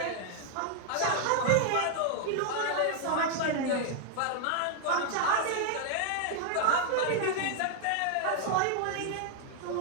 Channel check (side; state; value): both; different; correlation 0.00